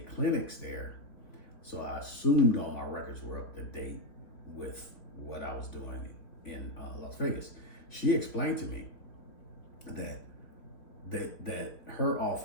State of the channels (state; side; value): late; right; 3.5 ms